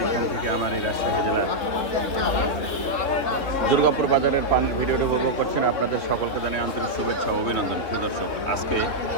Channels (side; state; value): right; late; 3.0 ms